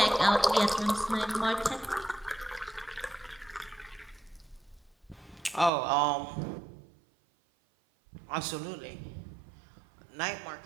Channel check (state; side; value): drops out; left; at 5.7 s